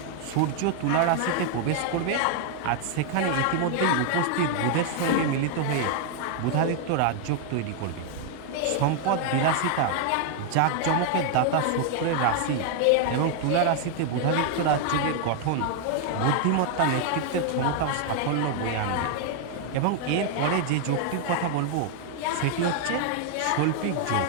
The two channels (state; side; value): different; both; correlation 0.00